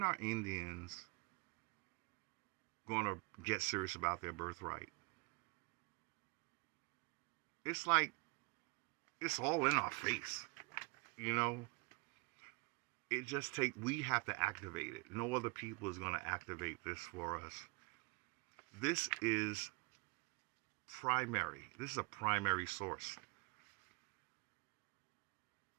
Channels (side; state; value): left; quieter; 30.3 dB